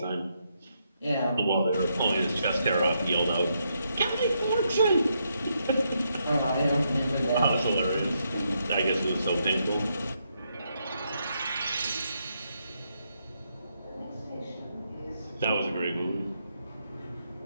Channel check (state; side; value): inverted; both; correlation -0.79